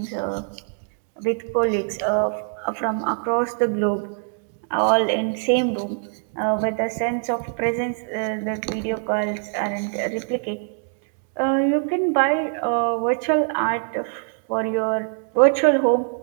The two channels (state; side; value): silent; left; digital silence